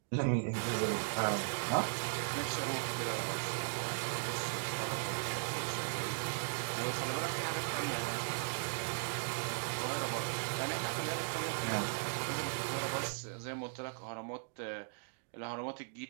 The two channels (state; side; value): silent; left; digital silence